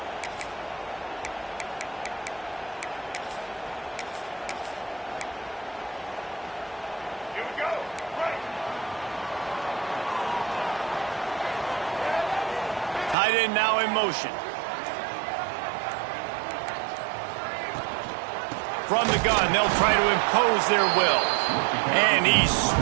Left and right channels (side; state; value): left; drops out; at 13.2 s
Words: Tight end now in motion. From the gun, they'll try to impose their will. And he's